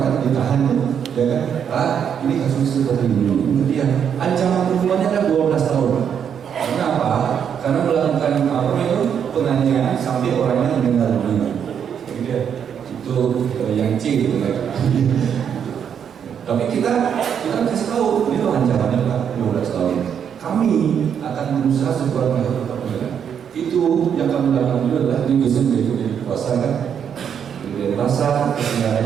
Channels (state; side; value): quieter; left; 8.0 dB